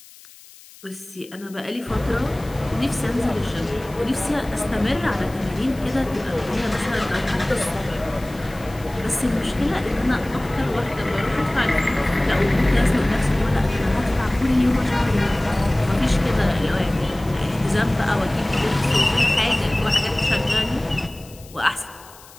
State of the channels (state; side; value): noise; left; hiss, 22 dB below the sound